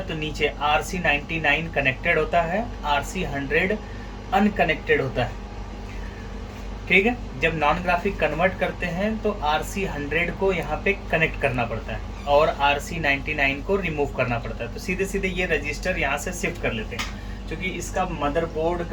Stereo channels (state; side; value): identical; both; correlation 1.00